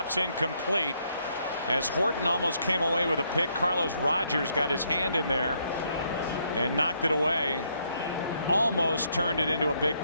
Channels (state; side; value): inverted; both; correlation -0.73